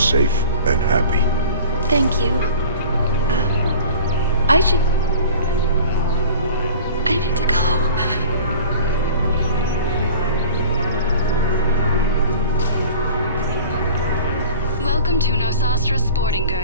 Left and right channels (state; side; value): inverted; both; correlation -0.41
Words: and happy. Thank you. I need to go. Welcome to Nosastra Sporting